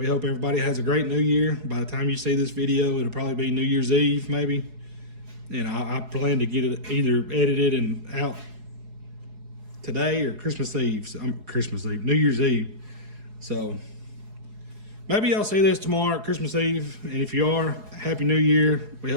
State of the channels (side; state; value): left; late; 4.8 ms